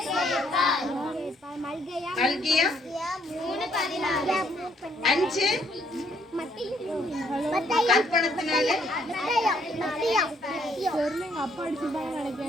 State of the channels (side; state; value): both; normal; correlation 0.69